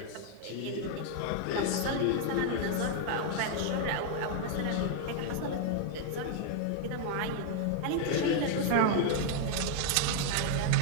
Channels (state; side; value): different; both; correlation 0.00